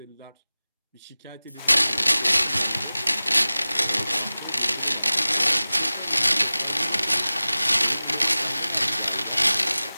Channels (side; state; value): both; inverted; correlation -0.97